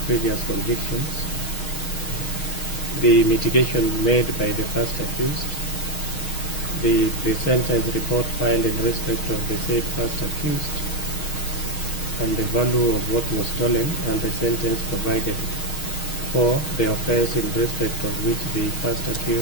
previous convictions. The mitigation made by the first accused, the pre-sentence report filed in respect of the said first accused, and the value of what was stolen, and the sentence provided for the offense in respect of which the first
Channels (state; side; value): late; right; 6.3 ms